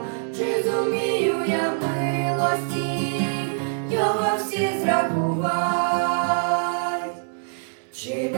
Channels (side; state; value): left; silent; 63 dB below the other